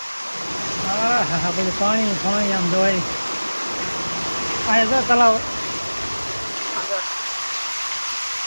હા હા બધું પાણી પાણી આમ જોવાય. અહીંયા જો તલાવ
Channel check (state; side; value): inverted; both; correlation -1.00